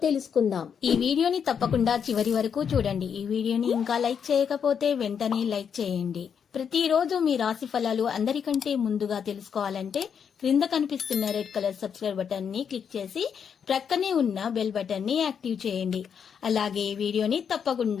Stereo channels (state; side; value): quieter; right; 7.3 dB